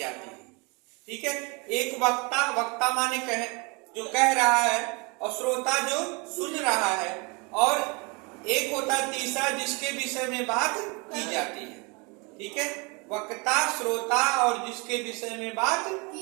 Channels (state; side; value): quieter; left; 29.9 dB